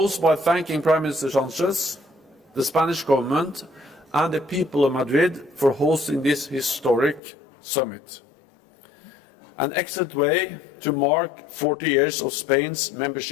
by thanking Prime Minister Sánchez, the Spanish government and the people of Madrid for hosting this historic summit. An excellent way to mark 40 years of Spain's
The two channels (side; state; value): right; drops out; at 7.2 s